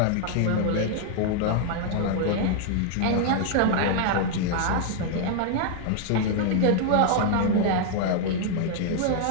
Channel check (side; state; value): both; different; correlation 0.00